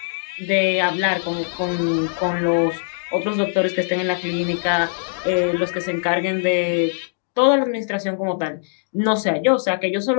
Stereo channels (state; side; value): silent; right; digital silence